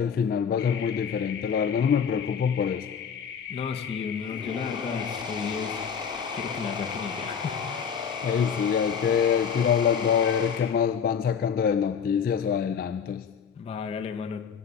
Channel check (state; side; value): quieter; right; 7.1 dB